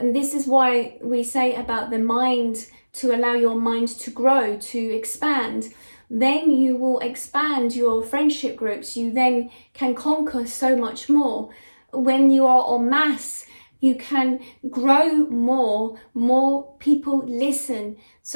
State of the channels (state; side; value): inverted; both; correlation -1.00